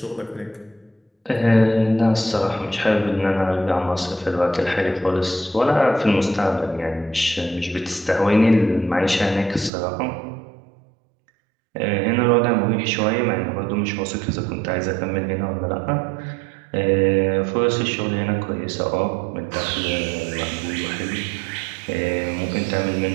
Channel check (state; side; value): drops out; left; at 9.7 s